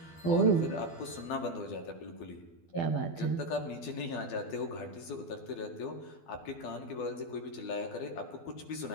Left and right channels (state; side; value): late; right; 12 ms